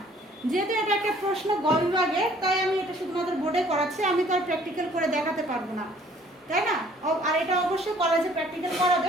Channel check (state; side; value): normal; both; correlation 0.57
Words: যেহেতু এটা একটা প্রশ্ন গ বিভাগে, তাই আমি এটা শুধুমাত্র বোর্ডে করাচ্ছি, আমি তো আর প্র্যাকটিক্যাল করে দেখাতে পারবো না, তাই না? আর এটা অবশ্যই কলেজে প্র্যাকটিক্যাল